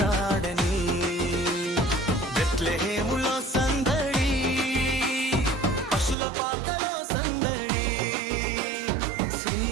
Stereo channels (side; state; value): left; drops out; at 6.2 s